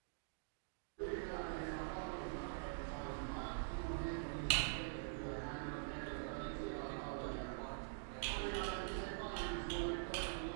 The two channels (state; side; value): silent; left; digital silence